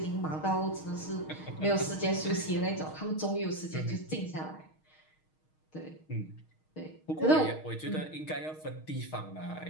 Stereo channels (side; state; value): right; late; 6.4 ms